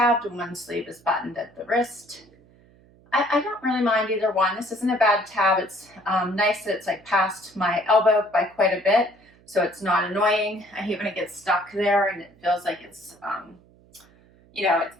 and one sleeve is buttoned at the wrist. I don't really mind either one. This isn't a bad tab. It's nice that it's like past my elbow by quite a bit. So it's not annoying. I hate when it gets stuck there and it feels like it's, you know,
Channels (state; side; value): noise; right; hum, 28 dB below the sound